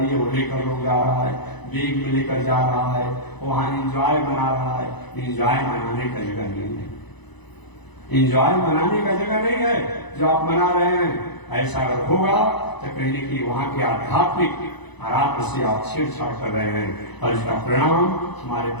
वो लेकर लोग जा रहा है, बैग में लेकर जा रहा है, वहां इंजॉय बना रहा है। इंजॉय मनाने का जगह नहीं है, इंजॉय मनाने का जगह नहीं है जो आप मना रहे हैं। ऐसा अगर होगा तो कहीं न कहीं वहां के आध्यात्मिक आराध्य से आप छेड़छाड़ कर रहे हैं, और इसका परिणाम हमारे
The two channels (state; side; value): late; right; 1.0 ms